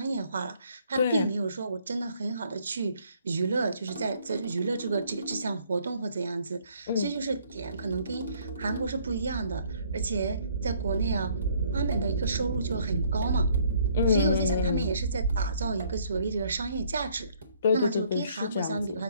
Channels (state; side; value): inverted; both; correlation -0.63